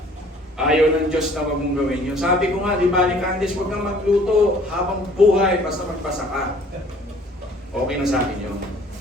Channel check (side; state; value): both; normal; correlation 0.55